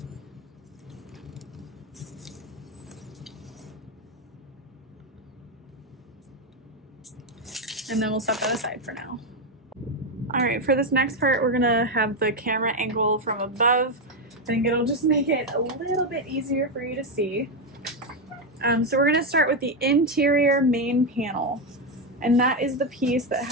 And then we'll set that aside for now. All right, for this next part, we're gonna have the camera angle from above. I think it'll just make it a little bit easier for you to see. So we're gonna start with the interior main panel, and that is the piece that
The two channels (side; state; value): both; normal; correlation 0.07